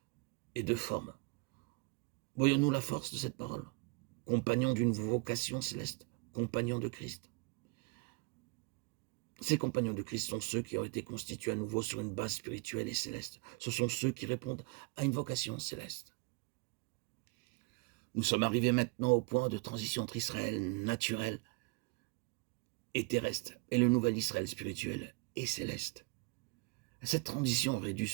et de formes. Voyons-nous la force de cette parole? Compagnons d'une vocation céleste, compagnons de Christ. Ces compagnons de Christ sont ceux qui ont été constitués à nouveau sur une base spirituelle et céleste. Ce sont ceux qui répondent à une vocation céleste. Nous sommes arrivés maintenant au point de transition entre Israël naturel et terrestre et le nouvel Israël spirituel et céleste. Cette transition aurait dû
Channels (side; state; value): left; quieter; 27.3 dB